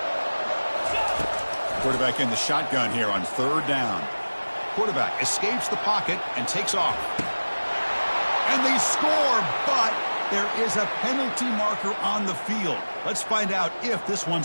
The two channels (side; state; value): both; inverted; correlation -1.00